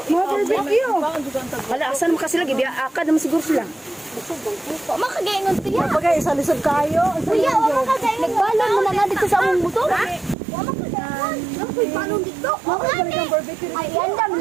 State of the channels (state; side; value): drops out; left; at 10.4 s